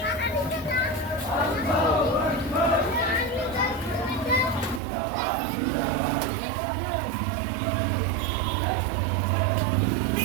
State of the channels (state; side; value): drops out; left; at 4.8 s